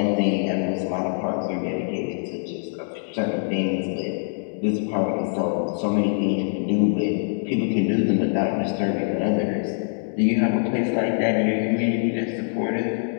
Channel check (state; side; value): silent; right; 63 dB below the other